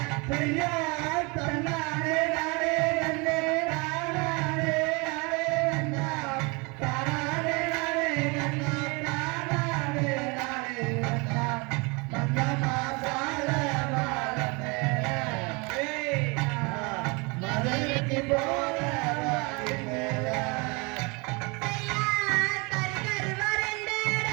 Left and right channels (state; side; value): quieter; left; 28.9 dB